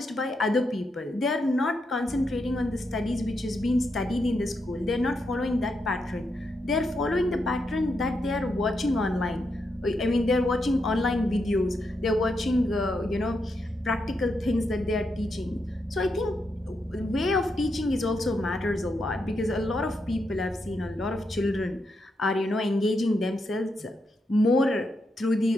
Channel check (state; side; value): normal; both; correlation 0.83